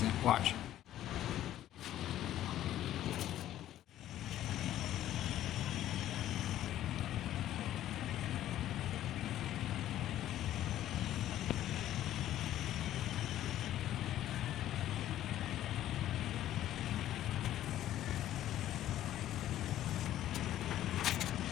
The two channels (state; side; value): quieter; right; 12.7 dB